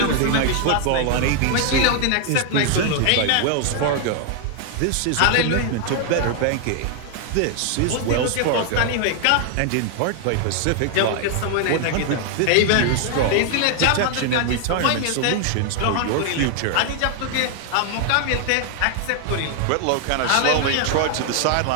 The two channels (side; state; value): both; different; correlation 0.00